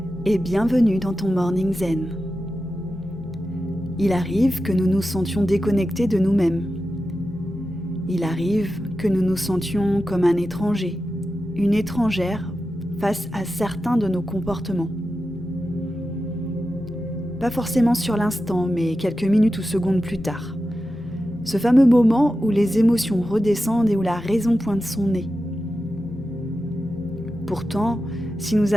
et bienvenue dans ton Morning Zen. Il arrive que nous nous sentions déconnectés de nous-mêmes. Il arrive que nous nous sentions comme un étranger, une étrangère face à certains de nos comportements. Pas forcément sur l'instant, mais quelques minutes ou secondes plus tard. Ce fameux moment où les émotions redescendent et où la raison pointe son nez. Pourtant, si nous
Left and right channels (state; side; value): normal; both; correlation 0.92